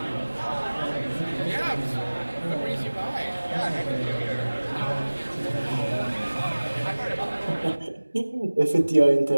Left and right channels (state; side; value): inverted; both; correlation -1.00